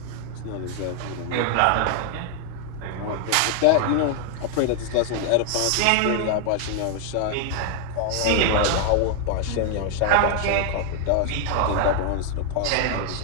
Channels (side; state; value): both; different; correlation 0.00